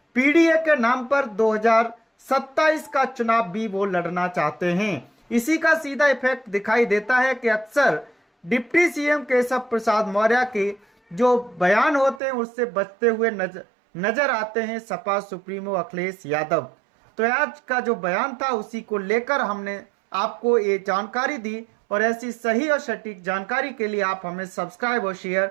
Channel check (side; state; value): left; drops out; at 12.2 s